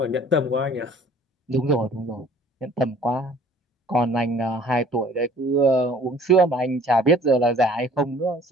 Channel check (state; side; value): normal; both; correlation 0.52